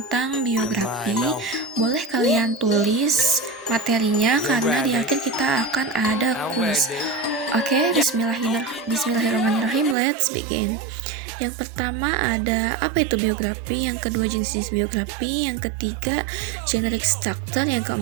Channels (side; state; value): left; drops out; at 10.0 s